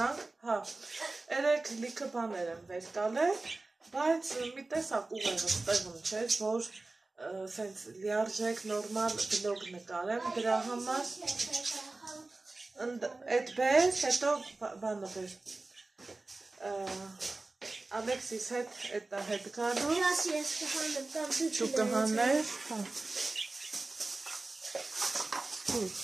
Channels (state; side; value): quieter; left; 3.3 dB